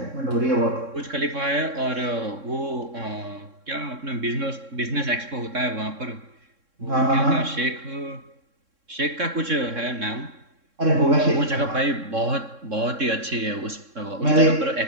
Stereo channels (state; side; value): late; left; 3.6 ms